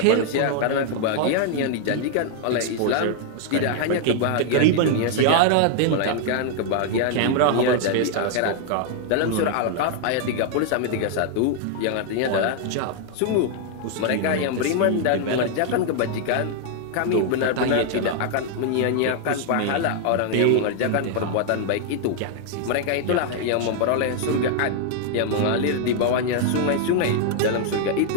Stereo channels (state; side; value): different; both; correlation 0.00